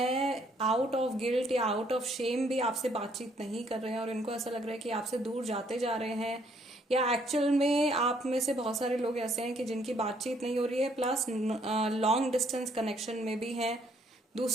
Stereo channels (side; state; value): both; normal; correlation 0.67